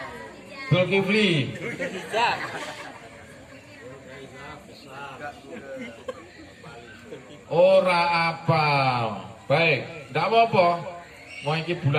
Zulkifli. Ora apal. Baik, ndak apa-apa. Mau iki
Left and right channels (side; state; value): both; identical; correlation 1.00